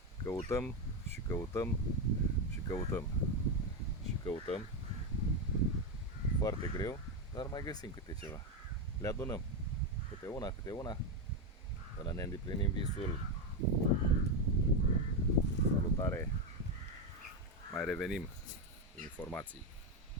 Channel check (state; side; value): normal; both; correlation 0.10